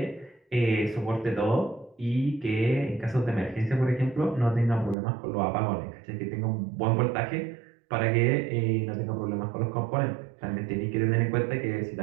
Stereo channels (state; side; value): drops out; left; at 5.0 s